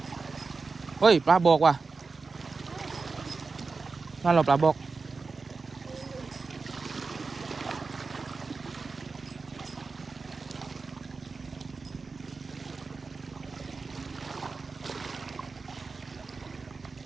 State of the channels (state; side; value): quieter; left; 4.3 dB